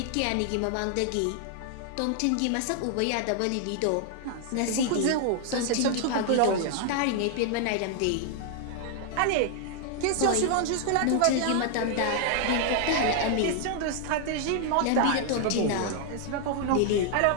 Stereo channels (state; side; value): different; both; correlation 0.00